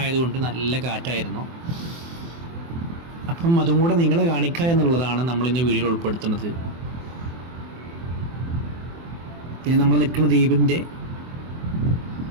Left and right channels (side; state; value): left; late; 24 ms